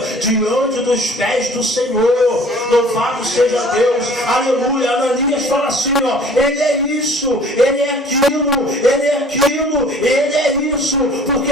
diante dos pés do Senhor. Louvado seja Deus, aleluia. Ananias fala assim, ó, ele é isso, ele é aquilo, ele é aquilo, ele é isso, porque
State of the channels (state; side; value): normal; both; correlation 0.51